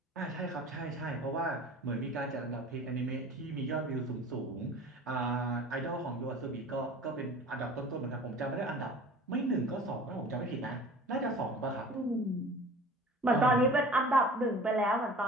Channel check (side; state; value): both; normal; correlation 0.43